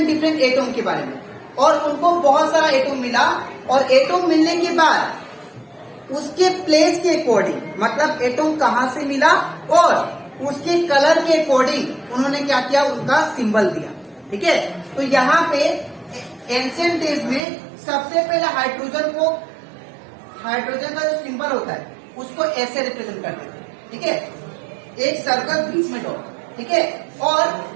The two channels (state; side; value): drops out; left; at 17.4 s